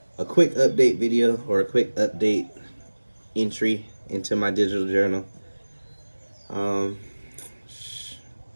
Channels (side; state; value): both; inverted; correlation -1.00